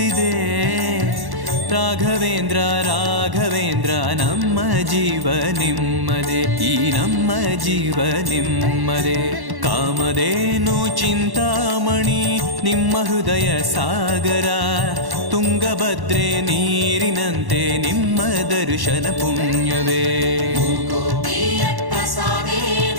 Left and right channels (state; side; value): late; left; 1.1 ms